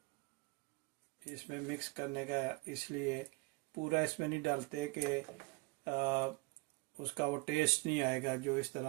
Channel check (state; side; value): quieter; left; 25.9 dB